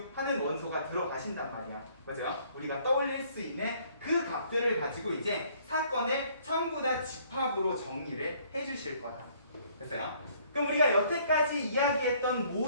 하는 원소가 들어가신단 말이야. 맞아요? 우리가 떠올릴 수 있는 그 값들을 가지고 이제 사건을 전부 다 집합으로 정리를 해주실 거다. 됐어요? 그럼 우리가 여태까지 이야기했던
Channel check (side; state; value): both; inverted; correlation -0.62